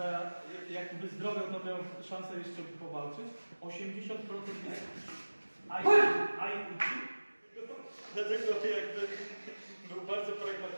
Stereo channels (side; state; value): both; inverted; correlation -1.00